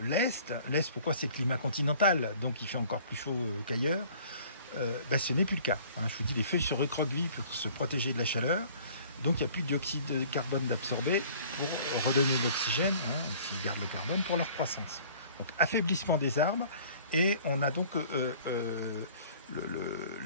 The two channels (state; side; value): inverted; both; correlation -0.51